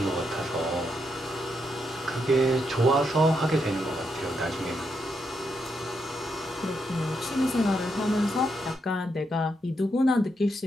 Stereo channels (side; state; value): both; normal; correlation 0.80